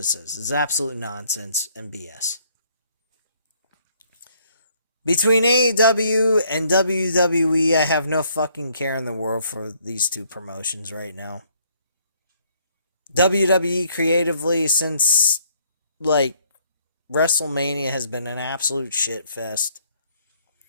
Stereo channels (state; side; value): inverted; both; correlation -0.66